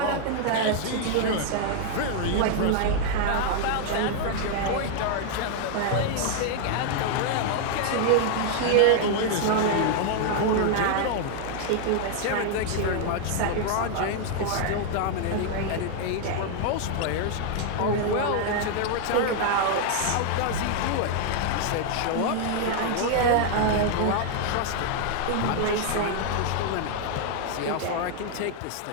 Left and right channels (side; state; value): both; different; correlation 0.00